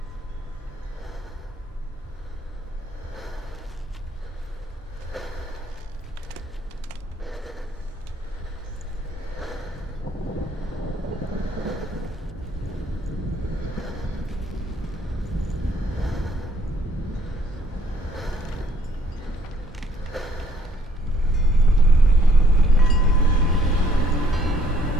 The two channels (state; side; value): normal; both; correlation 0.63